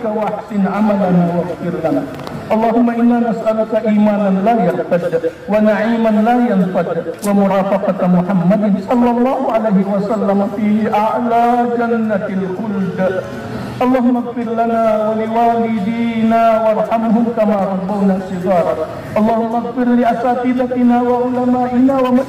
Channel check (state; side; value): identical; both; correlation 1.00